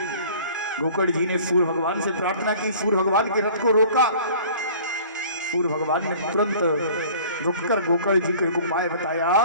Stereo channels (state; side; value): inverted; both; correlation -0.48